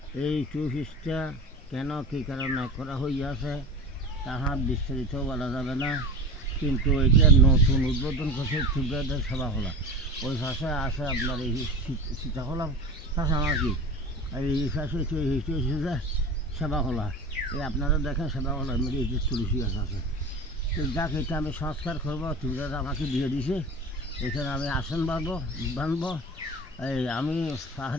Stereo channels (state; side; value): normal; both; correlation 0.32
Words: এই কোর্সটা কেন কী কারণে করা হইয়াছে তাহা বিস্তারিত বলা যাবে না, কিন্তু এটা নতুন উদ্বোধন করছে ত্রিপুরাদের সভাখোলা। ওই পাশে আছে আপনার এই সীতাখোলা পাশে আমার কি এই পাশে যে সেবাখোলা, এই আপনারা দেখেন সেবাখোলার মধ্যে এই যে তুলসী গাছ আছে। তো যাক, এটা আমি সংস্কার করবো, ত্রিপুরারা আমাকে দিয়ে দিছে। এখানে আমি আসন বানবো। এই আমি